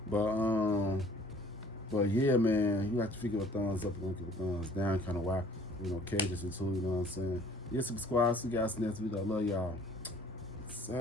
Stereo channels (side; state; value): both; normal; correlation 0.54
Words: But yeah, man, you have to figure a thumbs up and give a thumbs down, kind of why, cages and too. You know what I'm saying? Yeah, subscribe. See you guys next video. I love y'all.